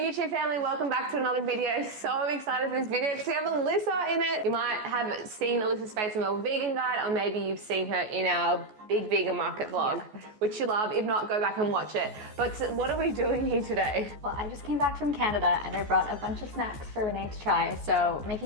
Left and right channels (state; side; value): late; left; 14 ms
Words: family, welcome back to another video. So excited for this video because we have Alyssa in it. You might have seen Alyssa's face in Melbourne Vegan Guide, or maybe you've seen her in our big vegan market vlog, which you love. If not, go back and watch it. But what are we doing here today? Well, I just came back from Canada and I brought a bunch of snacks for Renee to try. So